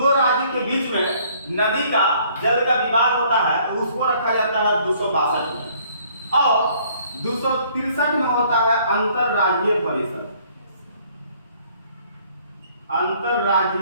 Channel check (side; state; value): both; inverted; correlation -0.61